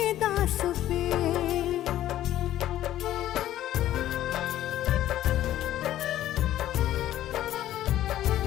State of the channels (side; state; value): right; quieter; 13.1 dB